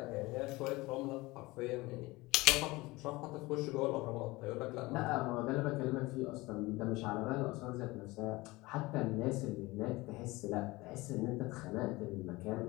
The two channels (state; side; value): quieter; right; 21.5 dB